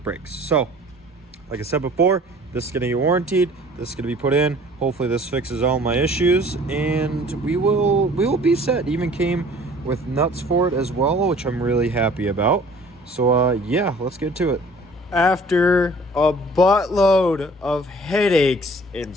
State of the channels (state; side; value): normal; both; correlation 0.51